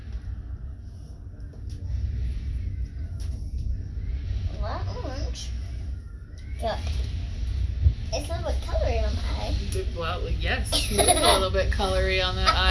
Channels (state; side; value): identical; both; correlation 1.00